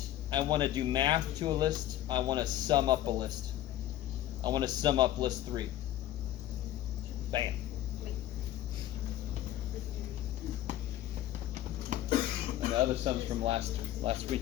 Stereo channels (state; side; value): quieter; right; 13.1 dB